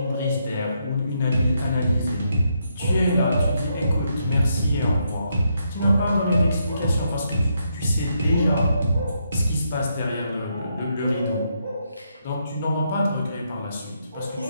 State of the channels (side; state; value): both; inverted; correlation -0.78